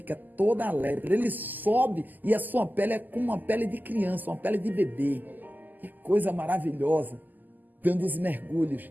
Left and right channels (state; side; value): late; left; 0.085 ms